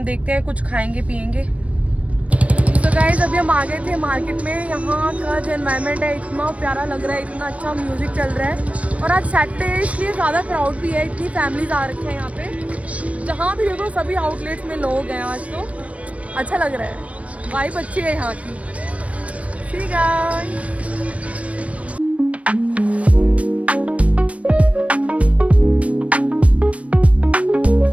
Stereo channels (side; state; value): left; late; 0.065 ms